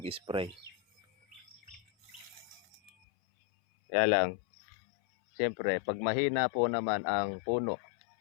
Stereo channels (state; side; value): drops out; right; at 2.9 s